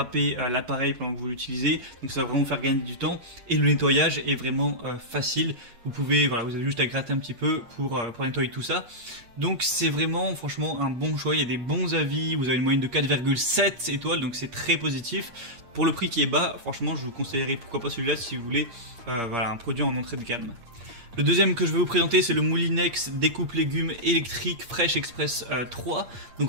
l'appareil pendant que vous l'utilisez, donc ça va vraiment faire gagner du temps. Et le nettoyage est vraiment facile. Vous pouvez, voilà, vous avez juste à gratter un petit peu pour nettoyer tout ça. Donc c'est vraiment, franchement, un bon choix. Il y a des bons avis. Vous avez une moyenne de 4,7 étoiles, donc c'est très positif. Pour le prix qui est bas, franchement, je vous conseillerais pourquoi pas celui-là si vous voulez, voilà, un produit en entrée de gamme. Le deuxième que je vais vous présenter, c'est le Moulinex découpe légumes électrique Fresh Express 3.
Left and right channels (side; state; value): left; late; 8.6 ms